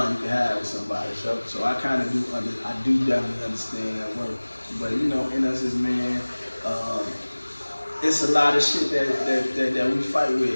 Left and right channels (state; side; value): inverted; both; correlation -1.00